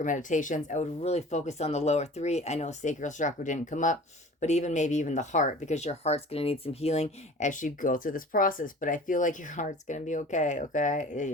meditations. I would really focus on the lower three. I know sacral chakra didn't come up, but maybe even the heart, because your heart's going to need some healing as you go through this process. But I feel like your heart's going to be okay. Okay.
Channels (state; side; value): normal; both; correlation 0.43